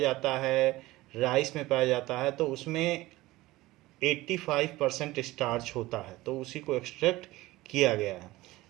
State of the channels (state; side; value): quieter; left; 18.7 dB